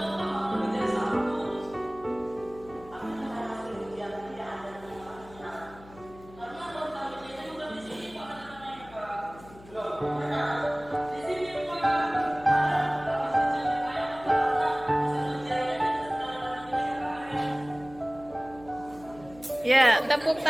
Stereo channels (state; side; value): noise; left; hum, 20 dB below the sound